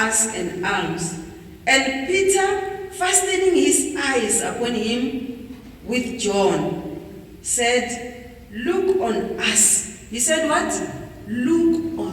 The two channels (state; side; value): identical; both; correlation 1.00